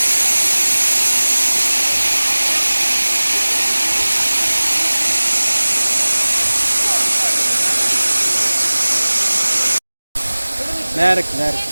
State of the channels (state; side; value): inverted; both; correlation -1.00